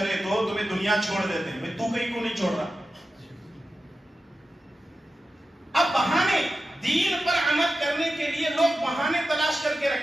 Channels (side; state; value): both; normal; correlation 0.92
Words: تو تمہیں دنیا چھوڑ دیتے ہیں، تو کہیں کو نہیں چھوڑ رہا۔ اب بہانے، دین پر عمل کرنے کے لیے لوگ بہانے تلاش کر کے